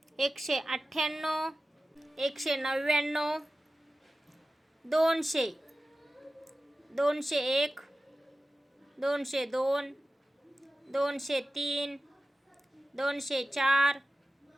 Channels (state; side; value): normal; both; correlation 0.95